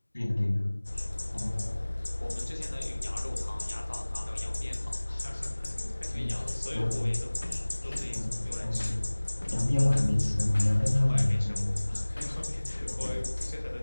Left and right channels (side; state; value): both; inverted; correlation -1.00